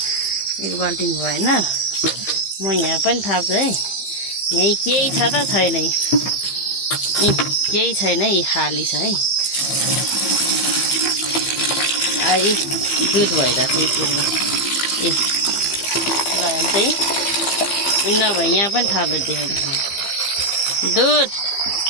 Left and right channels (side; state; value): right; late; 15 ms